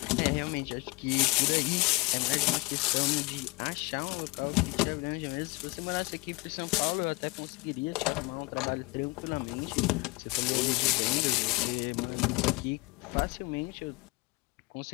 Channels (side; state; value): right; quieter; 25.9 dB